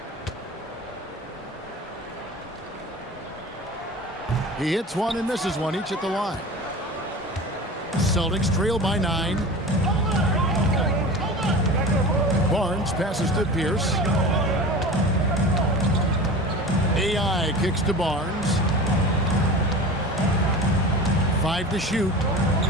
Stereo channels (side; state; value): both; normal; correlation 0.35